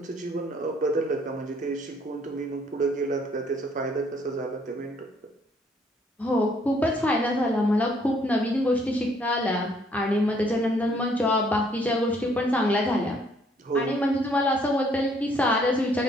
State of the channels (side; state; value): both; normal; correlation 0.65